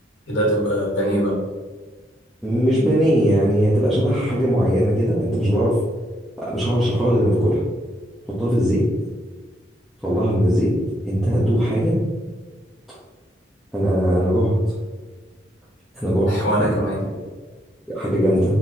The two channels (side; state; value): both; normal; correlation 0.74